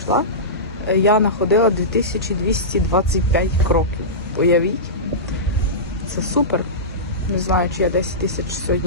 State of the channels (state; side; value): normal; both; correlation -0.17